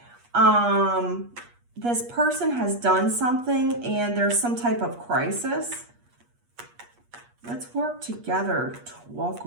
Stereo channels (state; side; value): late; left; 8.4 ms